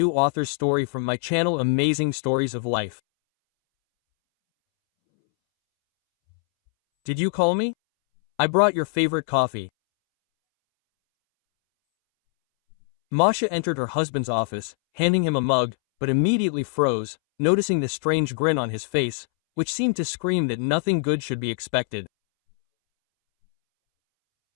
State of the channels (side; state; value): right; silent; 63 dB below the other